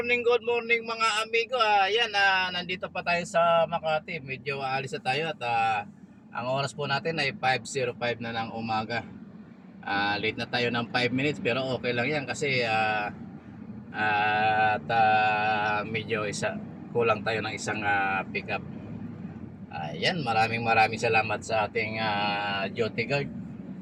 good morning mga amigo. Ayan, nandito pa tayo sa Makati. Medyo aalis na tayo at ang oras po natin ay 5:05 na ng umaga. Late na tayo ng 5 minutes pero okay lang yan kasi medyo kulang tayo ng isang pickup. Ayan, maraming salamat sa ating duty guard.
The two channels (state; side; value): identical; both; correlation 1.00